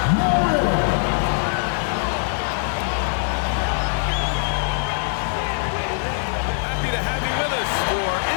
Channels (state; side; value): silent; right; 59 dB below the other